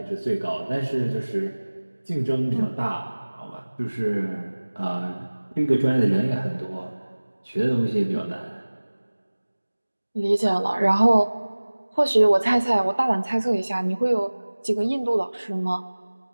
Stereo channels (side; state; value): both; inverted; correlation -1.00